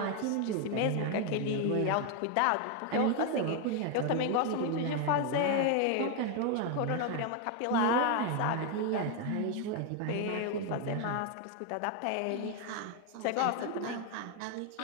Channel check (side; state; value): both; different; correlation 0.01